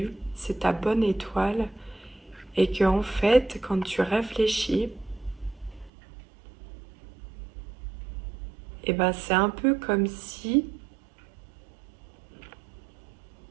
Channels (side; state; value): left; drops out; at 5.9 s